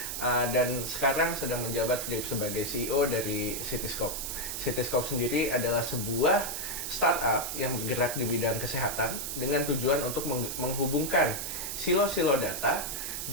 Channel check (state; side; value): noise; right; hiss, 4 dB below the sound